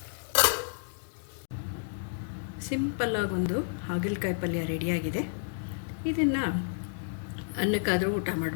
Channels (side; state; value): right; silent; digital silence